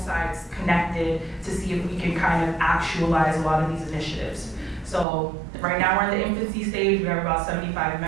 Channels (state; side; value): drops out; left; at 5.1 s